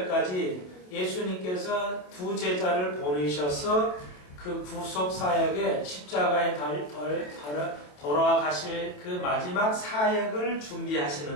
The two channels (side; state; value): right; late; 27 ms